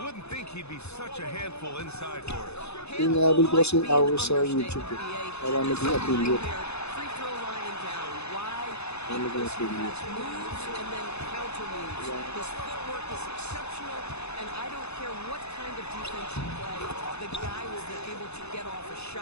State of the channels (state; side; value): late; right; 0.80 ms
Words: think he'd be such a handful inside for us. Inaabot ko kasing hours sa YouTube eh. Para maging affiliate. Free throw line and down. Wide. Para maging affiliate. Moves and then counter moves. His footwork is exceptional, and I don't care what kind of defense you play, the guy will be able to get off a